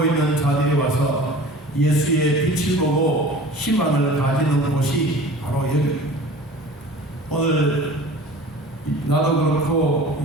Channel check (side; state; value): both; normal; correlation 0.42